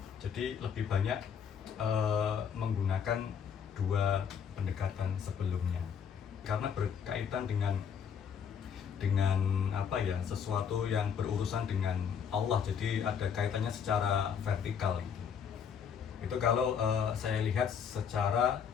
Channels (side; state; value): right; quieter; 7.4 dB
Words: Jadi lebih banyak menggunakan dua pendekatan sebelumnya karena berkaitan dengan sesuatu yang berurusan dengan Allah, jadi ada kaitannya secara vertikal gitu. Itu kalau saya lihat secara